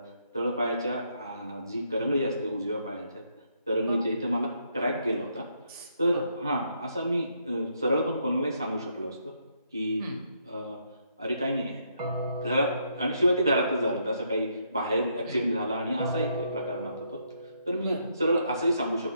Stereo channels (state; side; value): inverted; both; correlation -0.74